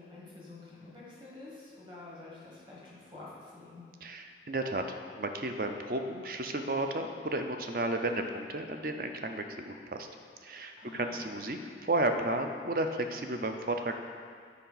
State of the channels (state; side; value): normal; both; correlation 0.07